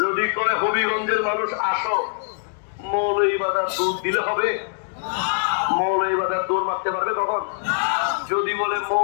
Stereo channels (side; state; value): right; silent; digital silence